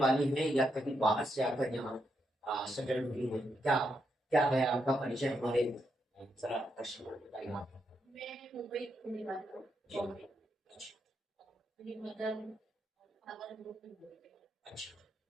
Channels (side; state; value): both; normal; correlation 0.81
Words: हैं या कहीं बाहर से आकर यहाँ सेटल हुई हैं? क्या क्या है आपका परिचय? हमारे जरा दर्शकों को बताइए आप। मैं मुंबई की रहने वाली हूँ, बॉम्बे। अच्छा मेरी मदर फादर लोग भी बोलते हैं। अच्छा,